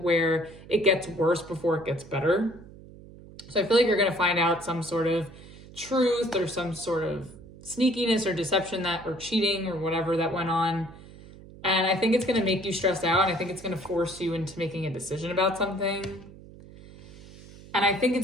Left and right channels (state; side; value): noise; right; hum, 19 dB below the sound